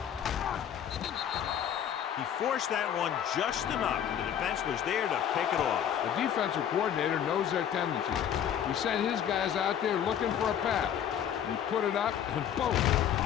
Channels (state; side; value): quieter; right; 9.4 dB